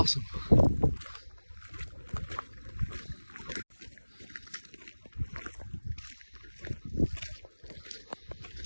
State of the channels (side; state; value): both; inverted; correlation -1.00